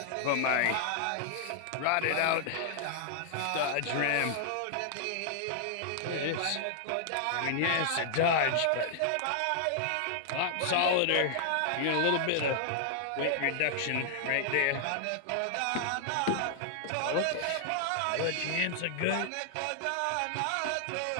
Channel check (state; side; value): different; both; correlation -0.01